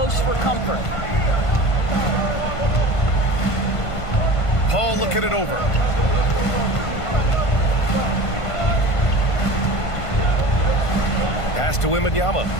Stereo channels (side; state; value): right; late; 1.5 ms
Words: for comfort. Paul looking it over. Pass to Wembanyama.